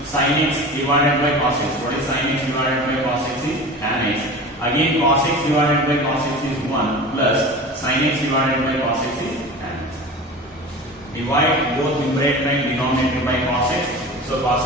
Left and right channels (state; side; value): normal; both; correlation 0.34